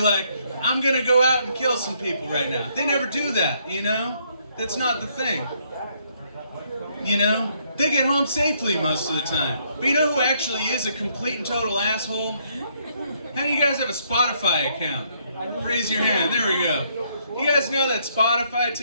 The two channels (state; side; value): inverted; both; correlation -0.70